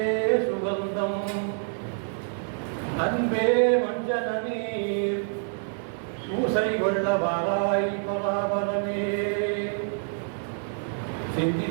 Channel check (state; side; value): silent; left; digital silence